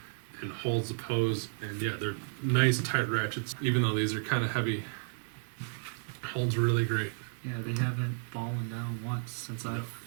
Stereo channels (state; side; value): silent; left; 56 dB below the other